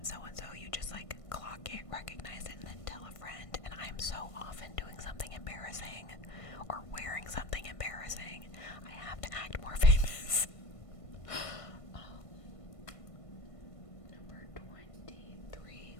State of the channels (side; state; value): right; late; 1.5 ms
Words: so-and-so. You just like clock it, recognize it, and then tell a friend. And I'm so often doing something embarrassing or wearing something embarrassing. I have to act more famous. Number 23.